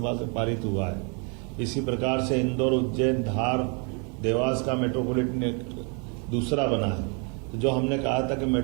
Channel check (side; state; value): left; quieter; 35.8 dB